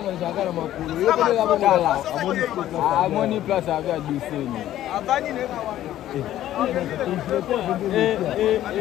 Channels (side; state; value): right; quieter; 13.0 dB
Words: amoni place ave aduseni